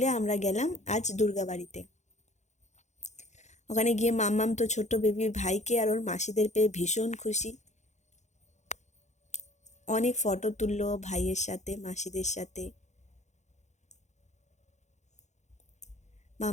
আমরা গেলাম আজ দুর্গাবাড়িতে। ওখানে গিয়ে মাম্মাম তো ছোট্ট বেবি ভাইকে আর ওর মাসিদের পেয়ে ভীষণ খুশি। অনেক ফটো তুললো ভাইয়ের সাথে, মাসিদের সাথে।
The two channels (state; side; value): late; right; 0.34 ms